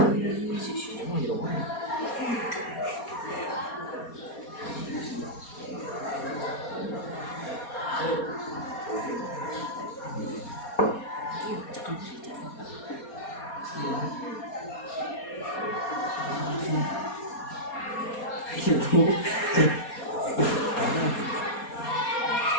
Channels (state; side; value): late; right; 4.2 ms